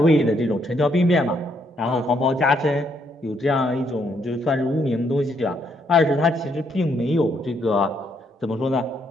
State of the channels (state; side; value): normal; both; correlation 0.73